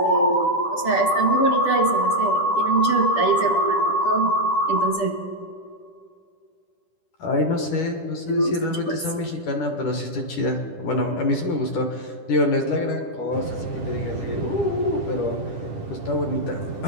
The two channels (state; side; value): late; right; 10 ms